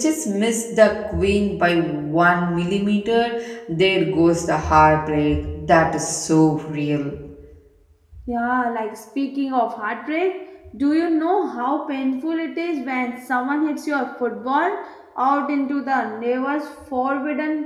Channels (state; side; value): identical; both; correlation 1.00